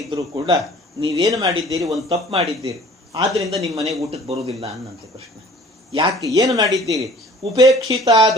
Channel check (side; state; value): both; normal; correlation 0.50